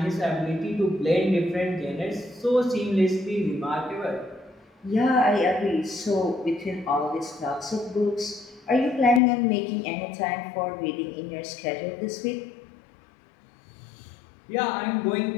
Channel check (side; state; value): right; drops out; at 9.2 s